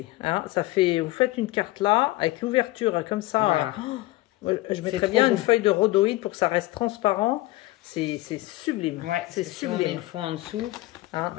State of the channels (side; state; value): right; quieter; 18.7 dB